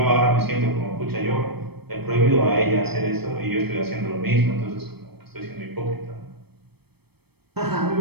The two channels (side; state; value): left; late; 0.97 ms